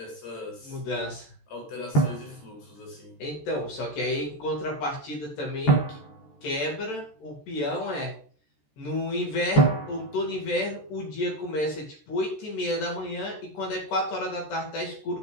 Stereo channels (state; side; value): late; right; 14 ms